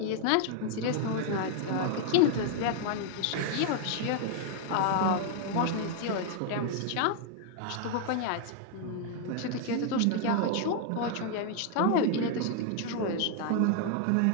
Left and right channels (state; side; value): different; both; correlation 0.00